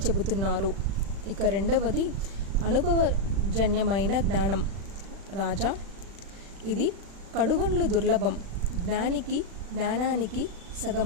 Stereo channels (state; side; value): late; left; 36 ms